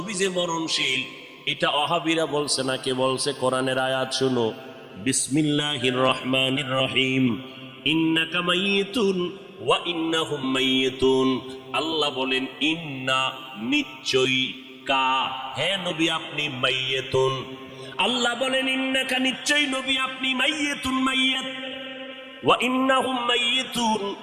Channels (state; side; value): identical; both; correlation 1.00